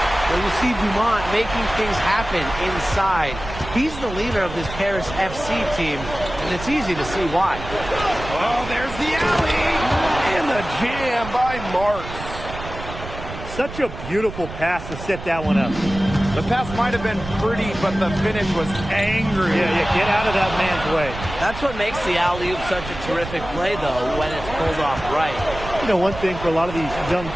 Well, you see Dumont making things happen inside. He's the leader of this Paris FC team, and it's easy to see why. Oh, there's the alley! And the jam by Marks. Such a beautiful pass to set that one up. The pass might have been pretty, but the finish was angry. Yeah, get out of that man's way. That's what makes the alley-oop such a terrific play, though, when it's pulled off right. You know, one thing for a lot of these young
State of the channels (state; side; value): noise; right; rumble, 11 dB below the sound